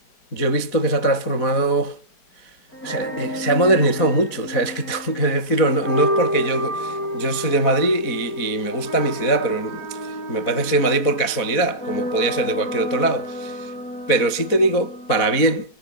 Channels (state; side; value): late; right; 4.1 ms